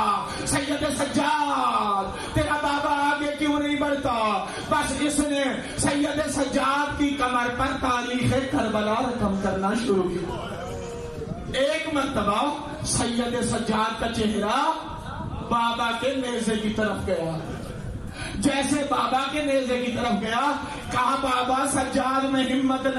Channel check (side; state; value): both; identical; correlation 1.00